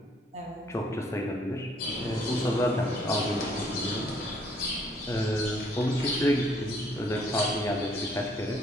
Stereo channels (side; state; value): both; normal; correlation 0.64